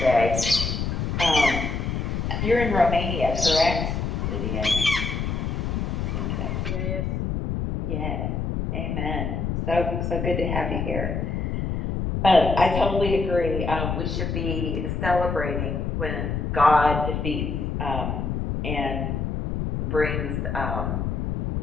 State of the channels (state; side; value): noise; left; rumble, 1 dB below the sound